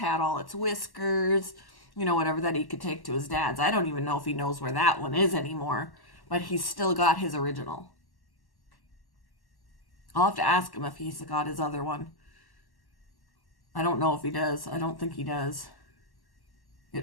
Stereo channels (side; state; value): right; late; 1.1 ms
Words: all its whiskers, whatever that he could take to his dad's. I don't even know if he knows where that one is anymore, but he's still got his original. I'll have to ask him if he's got his other one. I don't know if he does. I don't think he does.